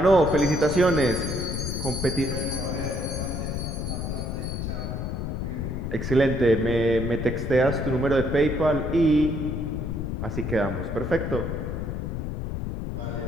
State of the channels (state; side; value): noise; left; rumble, 3 dB below the sound